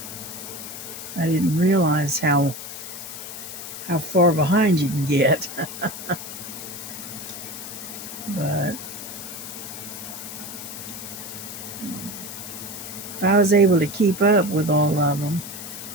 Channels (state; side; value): noise; left; hiss, 10 dB below the sound